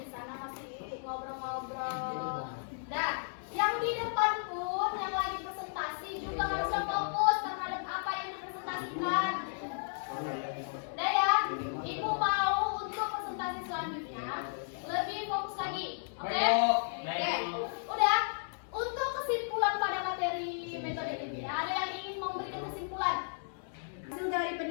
di sana masih ngobrol-ngobrol. Dan yang di depan pun yang lagi presentasi juga harusnya fokus terhadap apa yang dipresentasikan. Udah ya, ibu mau untuk presentasi selanjutnya lebih fokus lagi, oke? Oke, udah. Untuk kesimpulan pada materi metode ini, ada yang ingin memberikan kesimpulan? Hasil dari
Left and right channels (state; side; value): silent; right; digital silence